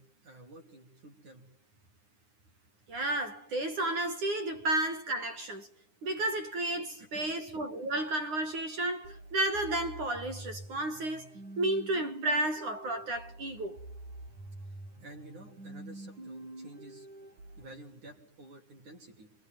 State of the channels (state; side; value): late; left; 9.7 ms